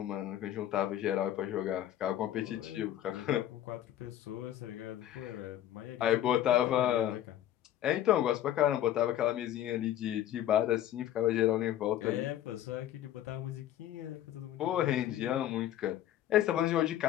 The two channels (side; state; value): right; quieter; 12.1 dB